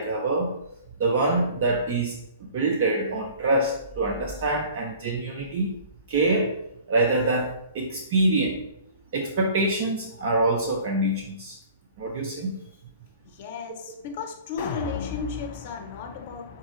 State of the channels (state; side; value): inverted; both; correlation -0.47